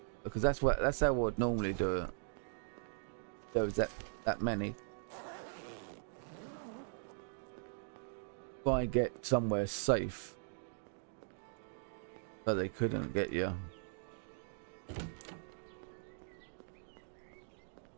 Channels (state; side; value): silent; left; digital silence